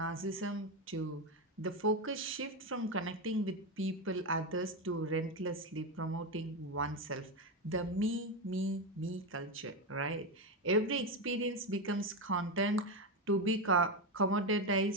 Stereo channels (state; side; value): normal; both; correlation 0.12